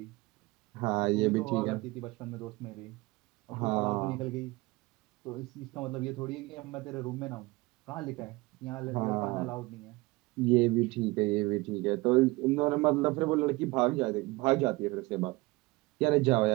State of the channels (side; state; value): left; quieter; 22.5 dB